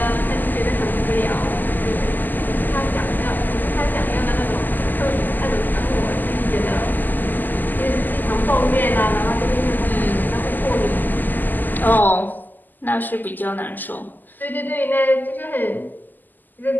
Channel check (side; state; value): right; late; 0.087 ms